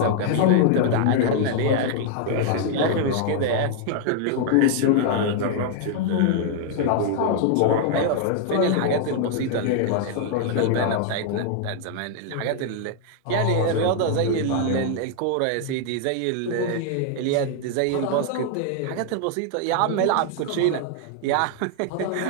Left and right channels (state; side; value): different; both; correlation 0.00